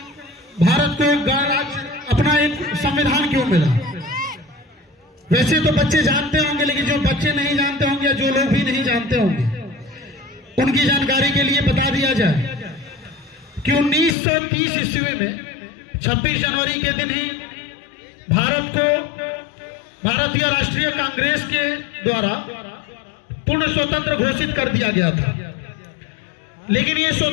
भारत को गणराज्य अपना एक संविधान क्यों मिला। वैसे तो बच्चे जानते होंगे, लेकिन जो बच्चे नहीं जानते होंगे या जो लोग भी नहीं जानते होंगे उनकी जानकारी के लिए बता दिया जाए कि 1930 ईस्वी में 26 जनवरी के दिन ही भारत को भारतीय राष्ट्रीय कांग्रेस के द्वारा पूर्ण स्वतंत्र घोषित कर दिया गया था। लेकिन ये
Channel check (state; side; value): drops out; right; at 14.2 s